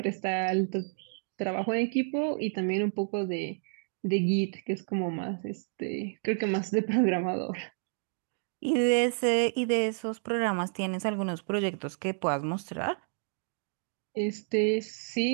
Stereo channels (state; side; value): silent; left; digital silence